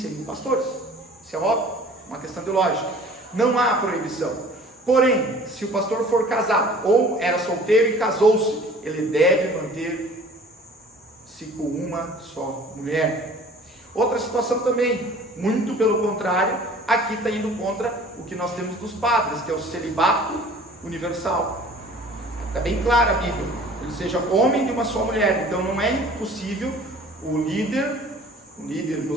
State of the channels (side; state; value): both; normal; correlation 0.48